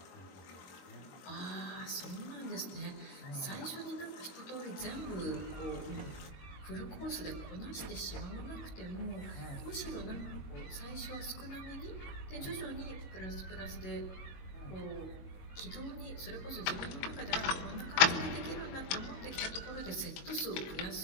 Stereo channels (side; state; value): right; late; 22 ms